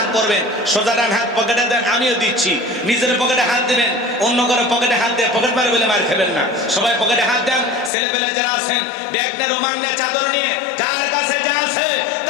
করবেন। সোজা ডান হাত পকেটে দেন, আমিও দিচ্ছি। নিজের পকেটে হাত দিবেন, অন্য করে পকেটে হাত দিয়ে পকেট মারে বলে মার খাবেন না। সবাই পকেটে হাত দেন। ছেলেপেলে যারা আছেন, ব্যাগ নিয়ে, রোমান নিয়ে, চাদর নিয়ে, যার কাছে যা আছে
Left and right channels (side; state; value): right; drops out; at 7.9 s